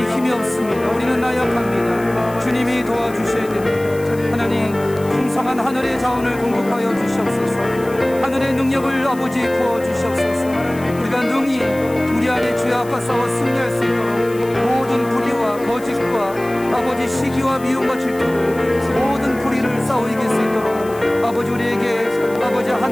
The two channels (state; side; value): noise; left; hiss, 21 dB below the sound